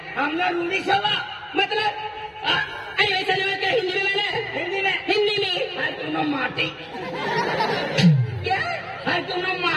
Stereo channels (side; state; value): both; identical; correlation 1.00